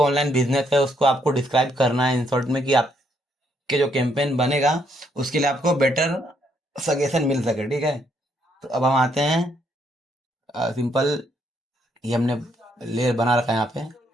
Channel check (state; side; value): normal; both; correlation 0.73